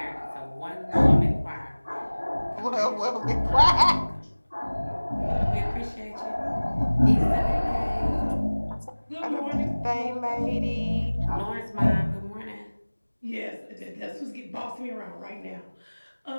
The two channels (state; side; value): inverted; both; correlation -1.00